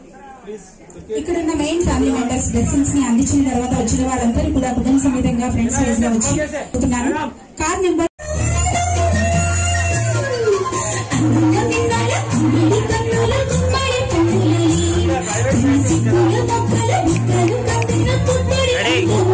ఇక్కడున్న మెయిన్ ఫ్యామిలీ మెంబర్స్ బ్లెస్సింగ్స్ ని అందించిన తర్వాత వచ్చిన వాళ్ళందరూ కూడా కుటుంబ సమేతంగా ఫ్రెండ్స్ వైజ్ గా వచ్చి కార్ నెంబర్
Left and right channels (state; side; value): identical; both; correlation 1.00